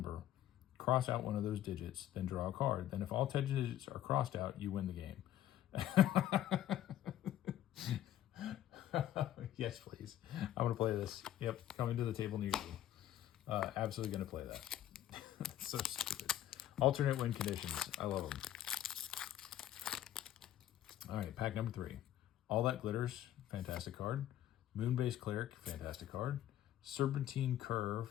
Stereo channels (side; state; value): right; quieter; 12.3 dB